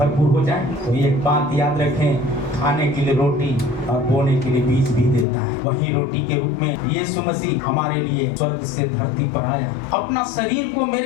हो जाए? तो एक बात याद रखें, खाने के लिए रोटी और बोने के लिए बीज भी देता है। वही रोटी के रूप में यीशु मसीह हमारे लिए स्वर्ग से धरती पर आया, अपना शरीर को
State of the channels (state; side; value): drops out; right; at 5.2 s